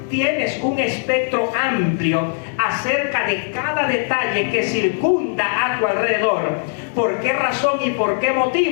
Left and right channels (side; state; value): right; silent; digital silence